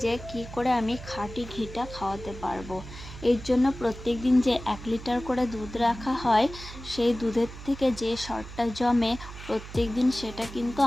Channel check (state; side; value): noise; right; hum, 13 dB below the sound